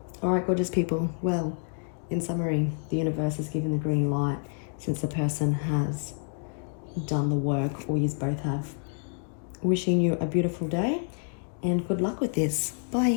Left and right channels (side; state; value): right; silent; 55 dB below the other